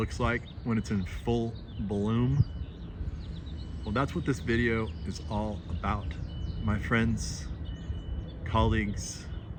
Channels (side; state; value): both; identical; correlation 1.00